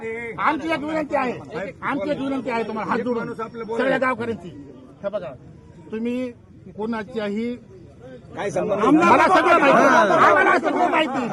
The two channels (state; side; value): identical; both; correlation 1.00